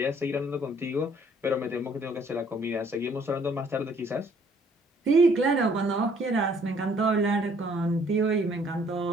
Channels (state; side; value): normal; both; correlation 0.62